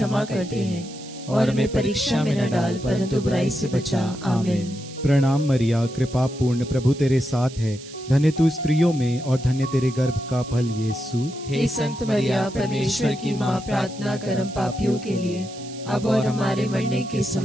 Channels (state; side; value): noise; right; hiss, 17 dB below the sound